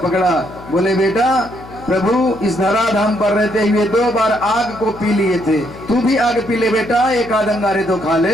बोले बेटा प्रभु इस धराधाम पर रहते हुए 2 बार आग को पी लिए थे, तू भी आग पी ले बेटा, एक आध अंगारे तो खा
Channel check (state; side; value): noise; left; hum, 17 dB below the sound